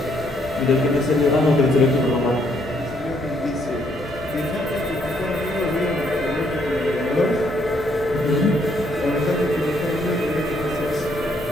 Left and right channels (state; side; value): normal; both; correlation 0.70